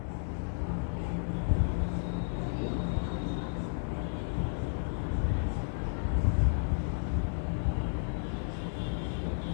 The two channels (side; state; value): right; silent; digital silence